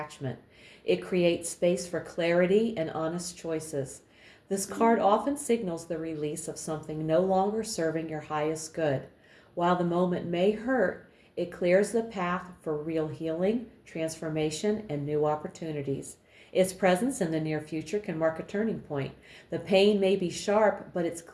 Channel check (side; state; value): both; identical; correlation 1.00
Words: It creates space for clarity and honest choices. This card often signals the release of something no longer serving your highest good. While the moment may hurt, it clears the path for real healing, transformation, and new opportunities. Its presence in the near future can mark a turning point. The pain may be sharp, but it's